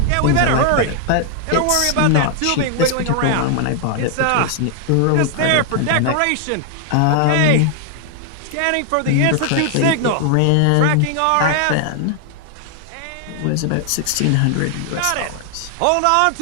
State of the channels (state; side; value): different; both; correlation 0.00